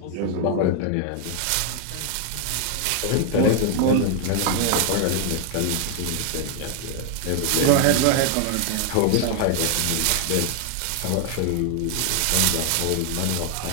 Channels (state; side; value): different; both; correlation 0.00